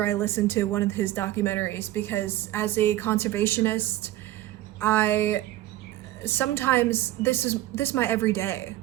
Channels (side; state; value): left; quieter; 15.1 dB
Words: I listen to one of his documentaries, because as a conservationist, sometimes this is my everyday.